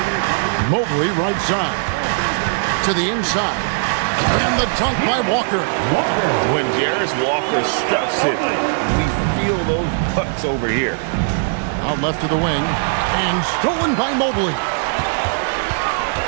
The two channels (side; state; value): left; silent; digital silence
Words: Mobley right side. To the inside. And the dunk by Walker. When Jarris Walker stuffs it, we feel those pucks over here. Out left to the wing. And stolen by Mobley.